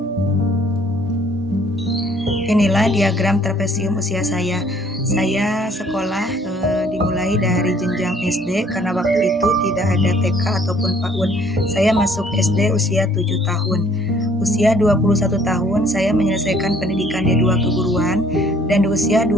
Inilah diagram trapesium usia saya. Saya sekolah dimulai dari jenjang SD karena waktu itu tidak ada TK ataupun PAUD. Saya masuk SD usia 7 tahun. Usia 21 tahun saya menyelesaikan pendidikan D2 keguruan dan di usia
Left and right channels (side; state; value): both; normal; correlation 0.59